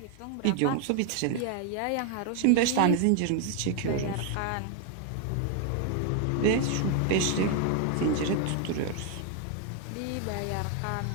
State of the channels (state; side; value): different; both; correlation 0.00